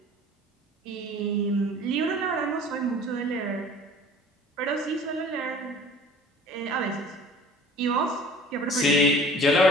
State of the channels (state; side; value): normal; both; correlation 0.47